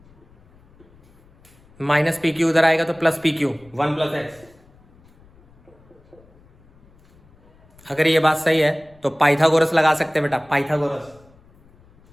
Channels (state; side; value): noise; left; rumble, 29 dB below the sound